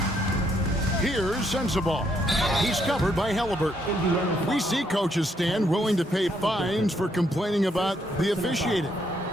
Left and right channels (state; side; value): normal; both; correlation 0.73